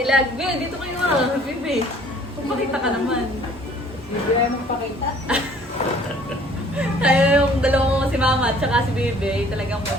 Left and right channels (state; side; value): normal; both; correlation 0.55